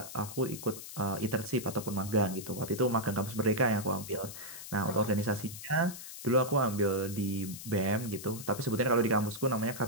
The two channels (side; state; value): left; noise; hiss, 11 dB below the sound